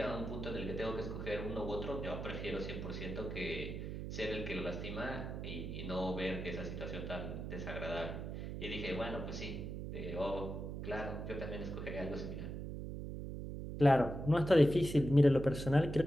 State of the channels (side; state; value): right; noise; hum, 6 dB below the sound